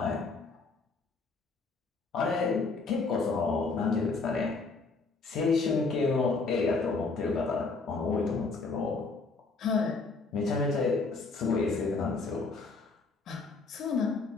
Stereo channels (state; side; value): quieter; right; 4.1 dB